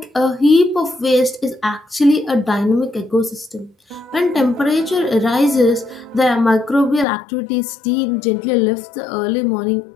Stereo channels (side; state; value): right; drops out; at 7.1 s